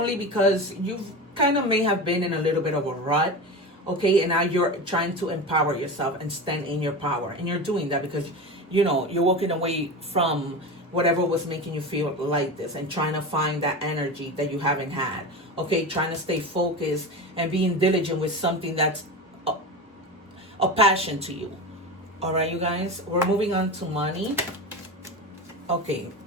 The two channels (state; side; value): normal; both; correlation 0.26